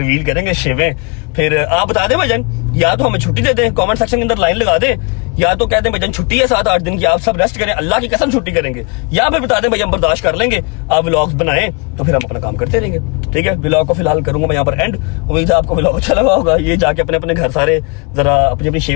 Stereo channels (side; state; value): right; quieter; 32.2 dB